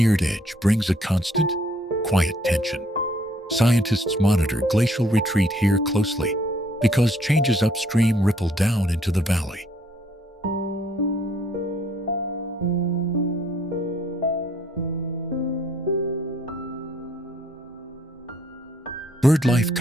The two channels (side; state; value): both; normal; correlation 0.64